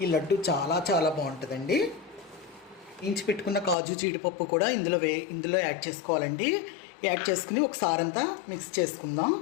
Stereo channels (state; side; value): drops out; right; at 3.8 s